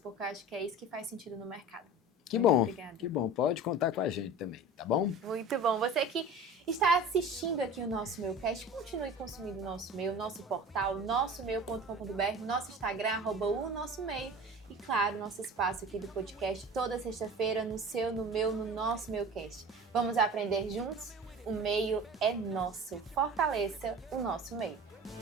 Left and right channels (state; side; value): normal; both; correlation 0.37